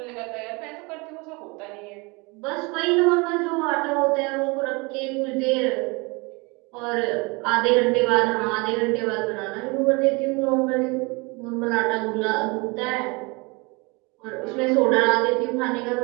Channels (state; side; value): quieter; left; 27.7 dB